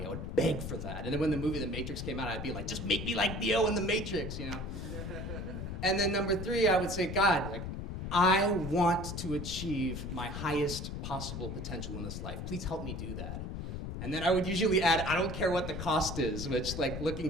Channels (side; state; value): left; noise; rumble, 6 dB below the sound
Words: I would beg for that. And then when the movie The Matrix came out, I'd be like, just make me like Neo in The Matrix, you know. And then number 3, I would say, God, like, I want to achieve my highest possible potential in this life. Please help me do that. And then I would usually add, I don't care what the cost is, which, like, looking